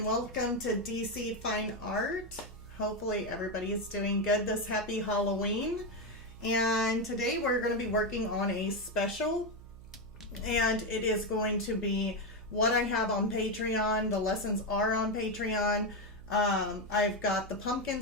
welcome to DC Fine Art. Hopefully everybody is doing good this happy Halloween. And today we're going to be working on a special, and it is going to be what I have on Patreon. The lessons are on Patreon. I've got the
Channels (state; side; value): noise; right; hum, 17 dB below the sound